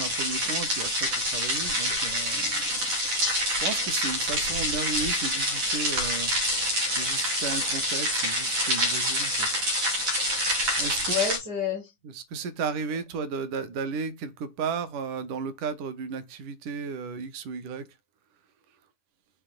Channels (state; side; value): late; left; 9.9 ms